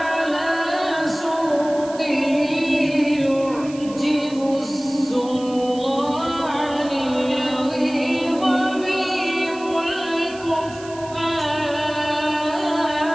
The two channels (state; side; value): noise; right; hiss, 19 dB below the sound